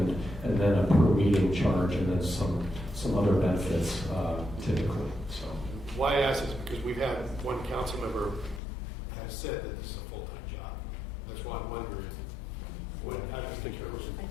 and then a per meeting charge, and then some other benefits typically. So Why I ask is because we've had one council member has said that this is a full-time job. That's why I'm wondering, how do you determine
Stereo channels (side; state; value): right; drops out; at 8.6 s